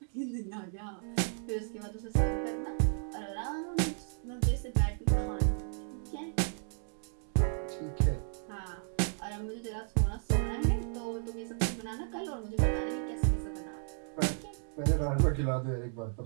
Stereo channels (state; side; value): silent; left; 55 dB below the other